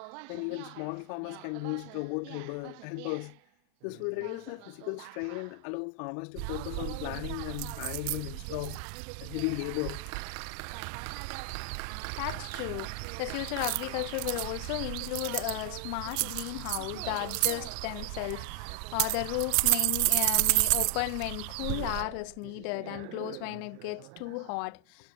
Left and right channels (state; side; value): different; both; correlation 0.00